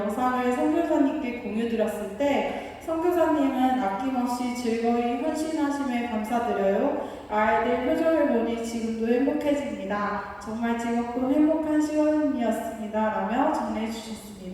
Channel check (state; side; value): identical; both; correlation 1.00